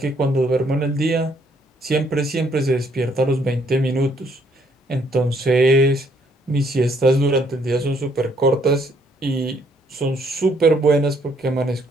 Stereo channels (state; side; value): normal; both; correlation 0.68